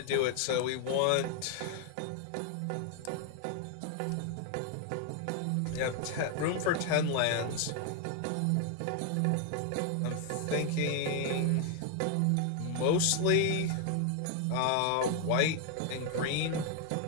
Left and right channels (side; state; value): both; different; correlation 0.00